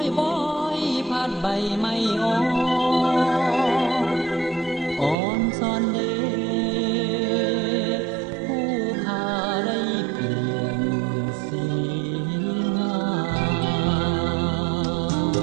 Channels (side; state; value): left; drops out; at 5.2 s